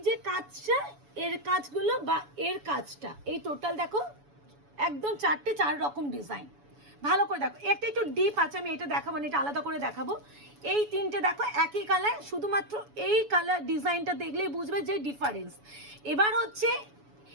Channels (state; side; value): late; left; 7.0 ms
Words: যে কাজটা, এর কাজগুলো বা এর কাজটা, এই টোটাল দেখো একদম 4 রকম ডিজাইন। ভালো করে দেখো, একটা একটু ডিপ আছে, আমি এটা দেখাবো না, এটা আলাদা করে দেখাবো। এই 3টে দেখো একই কালার, শুধুমাত্র এই কালার ডিজাইনটা দেখলেই বুঝবে যে ডিফারেন্স। এবার হচ্ছে